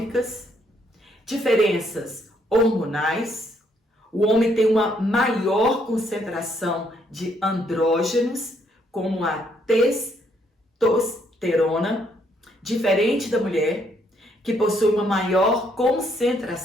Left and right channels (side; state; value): both; normal; correlation 0.71